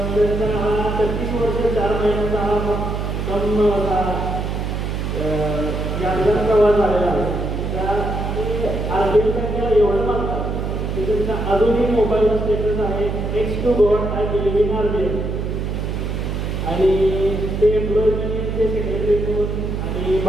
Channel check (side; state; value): right; noise; hum, 2 dB below the sound